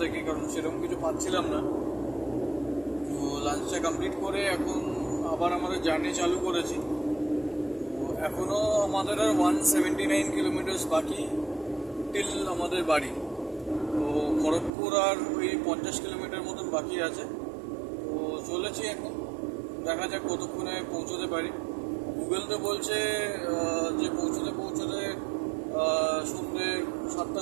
থেকে, কারণ সেরকম কিছু পাচ্ছিলাম না। তো লাঞ্চটা কমপ্লিট করে এখন আবার আমাদের জার্নি চালু করেছি। তো এখনও আমাদের আর 179 কিলোমিটার বাকি টিল আমাদের বাড়ি। তো খড়গপুর আর ওই 50 কিলোমিটার মতন বাকি আছে। তো চলেছি এখন, দেখা যাক কতক্ষণে পৌঁছতে পারি। গুগল তো বলছে যে পৌঁছতে সন্ধ্যে 7টা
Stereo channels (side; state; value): left; drops out; at 14.7 s